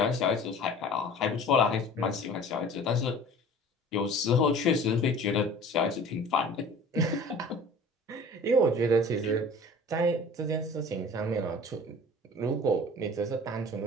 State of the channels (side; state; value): both; normal; correlation 0.44